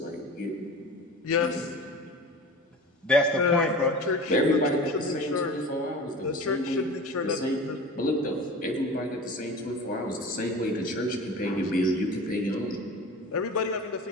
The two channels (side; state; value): both; normal; correlation 0.36